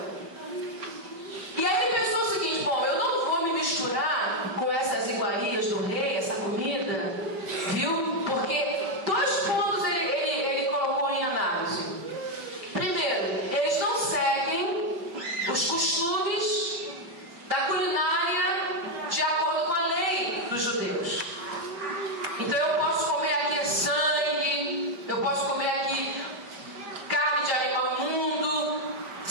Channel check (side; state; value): left; late; 5.2 ms